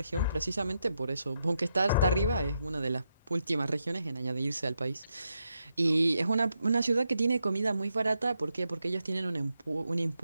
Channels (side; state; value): both; inverted; correlation -0.82